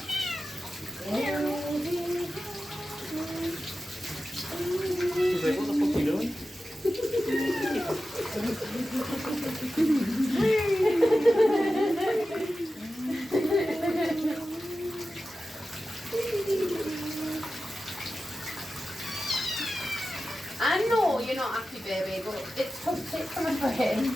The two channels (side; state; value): both; normal; correlation 0.93